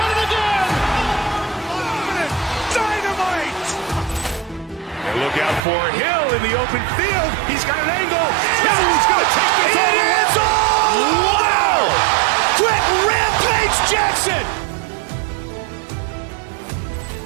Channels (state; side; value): drops out; left; at 5.6 s